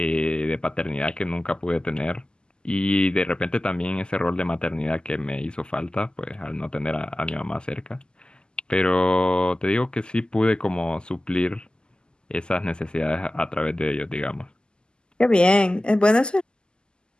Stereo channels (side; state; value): right; late; 0.047 ms